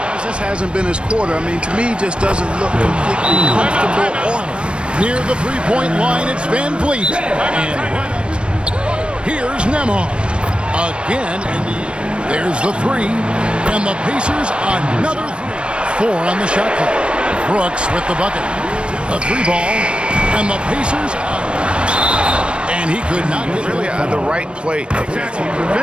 This hasn't been his quarter. I mean, to me, just doesn't look completely comfortable or Near the three-point line, it's Van Vliet. And here's Nembhard. Again, and there's the three. And the Pacers, another three. 4 on the shot clock. Brooks with the bucket. A three ball. And the Pacers, and he could not get Really the right play.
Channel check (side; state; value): left; late; 0.057 ms